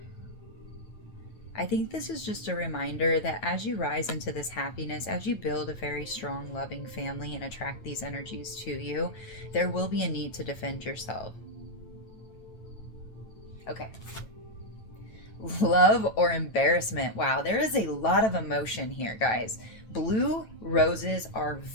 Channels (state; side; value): late; right; 9.2 ms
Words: I think this is just a reminder that as you rise into this happiness, as you build a very strong, loving family and attract these energies to you, there will be a need to defend yourself. Okay. Love or embarrassment. Wow, there is a lot of emotion here, guys. Blue roses are